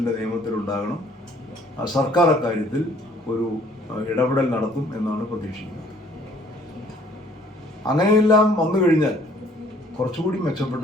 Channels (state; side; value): normal; both; correlation 0.59